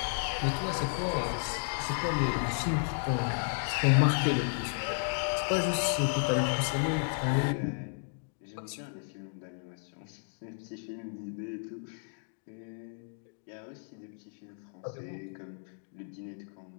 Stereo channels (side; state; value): right; silent; digital silence